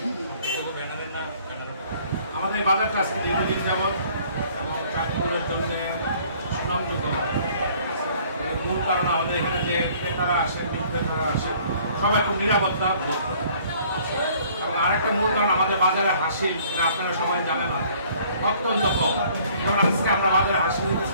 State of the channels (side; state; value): both; inverted; correlation -0.57